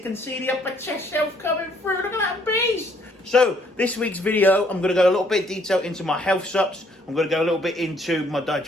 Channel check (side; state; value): both; normal; correlation 0.65